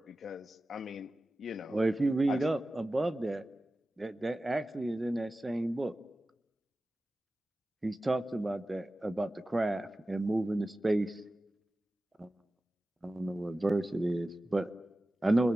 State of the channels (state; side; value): normal; both; correlation 0.95